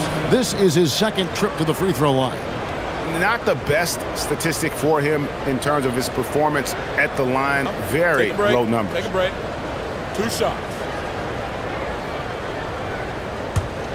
This is his second trip to the free throw line. Not the best statistic for him in terms of his performance at the line. Very low numbers. Take a break. 2 shots.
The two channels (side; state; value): both; identical; correlation 1.00